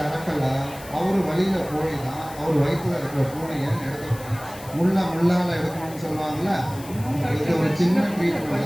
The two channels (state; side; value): noise; left; hiss, 18 dB below the sound